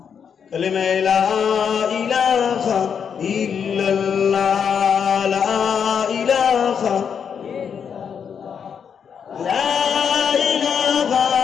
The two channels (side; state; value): right; quieter; 7.2 dB